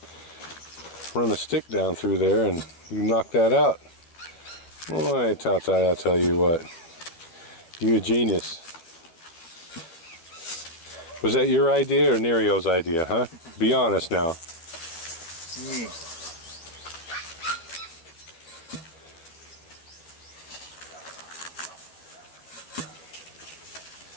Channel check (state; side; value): late; right; 12 ms